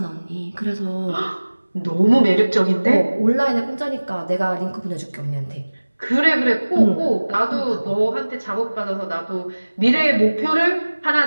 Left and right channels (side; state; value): both; inverted; correlation -1.00